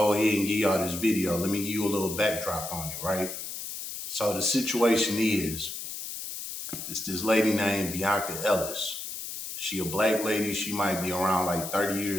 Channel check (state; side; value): noise; left; hiss, 7 dB below the sound